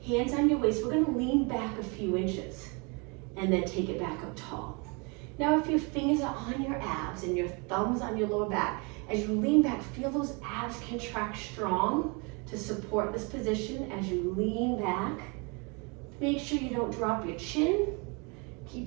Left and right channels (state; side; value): quieter; left; 31.4 dB